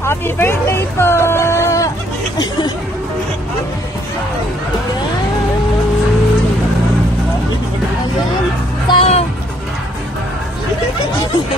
Happy birthday po! Ayan. So,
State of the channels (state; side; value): normal; both; correlation 0.65